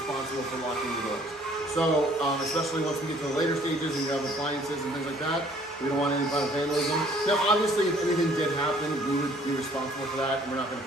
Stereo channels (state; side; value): normal; both; correlation 0.58